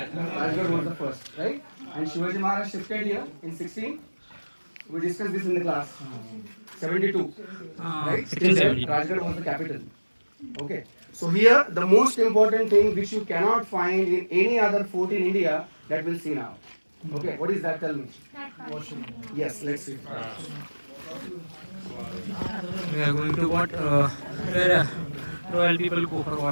was the first, right? And Shivaji Maharaj shifted here in 16. We discussed this in the class. 72. Right? 1670. Rajgarh was the capital. Okay. So here, the most important thing which you cannot find in any other fort in India, that we'll see now. Okay. What is that? Tell me. Washroom. Yes. Let's see. We are going to what? Where royal people go for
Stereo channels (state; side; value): inverted; both; correlation -1.00